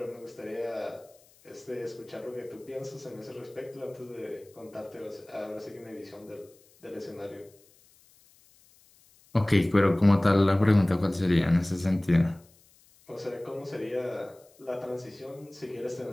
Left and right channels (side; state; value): left; noise; hiss, 29 dB below the sound